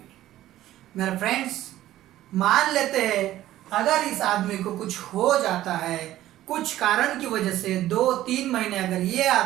मेरे फ्रेंड्स, मान लेते हैं अगर इस आदमी को कुछ हो जाता है, कुछ कारण की वजह से 2-3 महीने अगर ये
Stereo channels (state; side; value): quieter; left; 14.1 dB